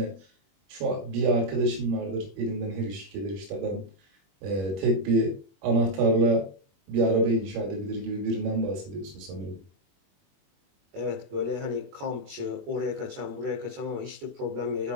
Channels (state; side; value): late; left; 21 ms